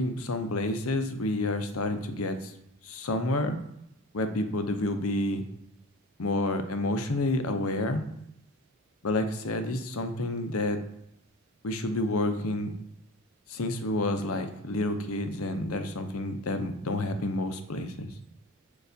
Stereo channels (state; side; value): normal; both; correlation 0.34